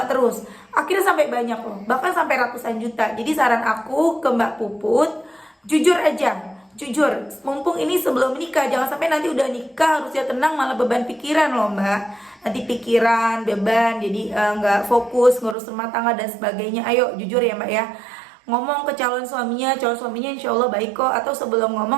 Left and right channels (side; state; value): left; drops out; at 15.6 s